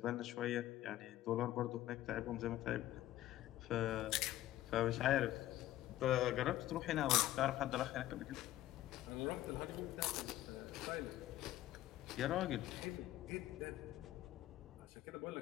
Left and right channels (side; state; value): right; quieter; 14.7 dB